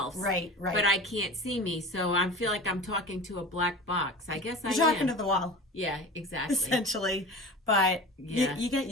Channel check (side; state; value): both; normal; correlation 0.34